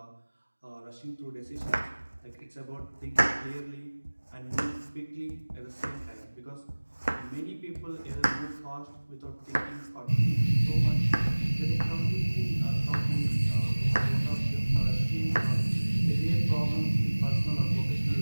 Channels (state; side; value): inverted; both; correlation -1.00